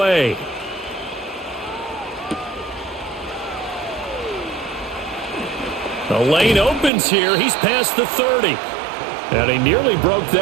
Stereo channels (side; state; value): left; drops out; at 6.9 s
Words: The lane opens here. He's past the 30. And he nearly broke